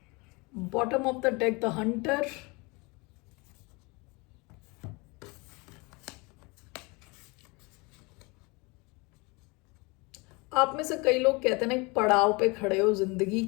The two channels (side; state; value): right; quieter; 27.2 dB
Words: bottom of the deck the hunter, आप में से कई लोग कहते हैं ना एक पड़ाव पे खड़े हो जिंदगी